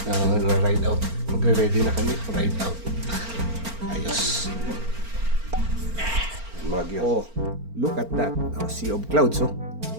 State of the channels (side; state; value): left; late; 4.4 ms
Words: Na-ride out. Magre-ready na kami. Ride out. Ayos. Oh, look at that. Sea of clouds, oh.